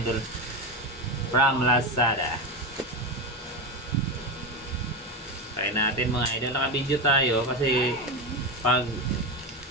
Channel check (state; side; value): normal; both; correlation 0.16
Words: from Lazada. Try natin mga idol. Naka-video tayo kasi pag